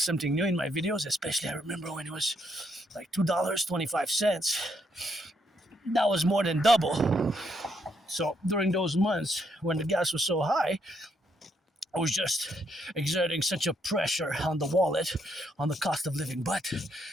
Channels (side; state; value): both; normal; correlation 0.75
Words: something new in my videos. Especially I remember when it was like $2.25. That was more than double So during those months when the gas was so high, I was just exerting such a pressure on the wallet, on the cost of living. But